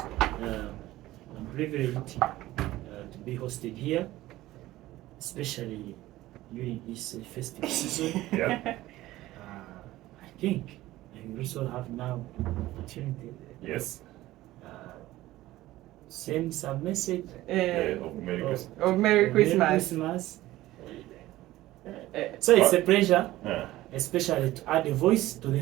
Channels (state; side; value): quieter; left; 16.4 dB